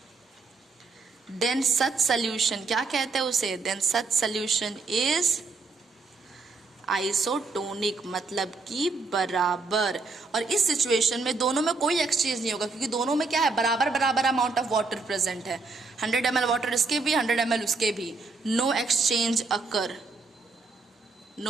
then such solution, क्या कहते हैं उसे, then such solution is isotonic, मतलब कि बराबर। और इस सिचुएशन में दोनों में कोई एक्सचेंज नहीं होगा, क्योंकि दोनों में क्या है, बराबर बराबर अमाउंट ऑफ वाटर प्रेजेंट है। 100 ml वाटर इसके भी, 100 ml उसके भी, नो एक्सचेंज अकर,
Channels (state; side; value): quieter; left; 4.0 dB